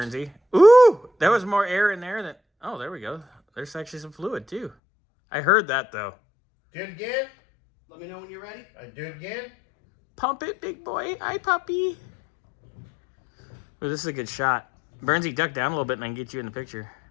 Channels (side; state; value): right; drops out; at 4.8 s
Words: Ooh, there was more air in there than... Oh, there we go. There's actually some fluid, too. I heard that, though. Do it again. Let me know when you're ready. Do it again. Pump it, big boy. Hi, puppy. Ooh, this is a good shot. Burnsy, duck down a little bit and I can get you in the picture.